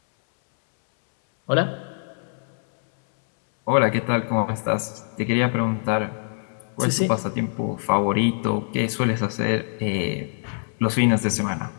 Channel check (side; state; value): right; silent; 63 dB below the other